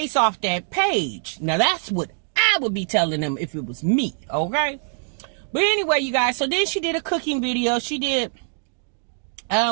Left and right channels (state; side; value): silent; left; 63 dB below the other